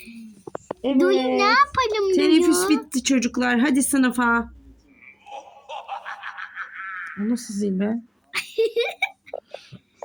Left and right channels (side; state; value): both; identical; correlation 1.00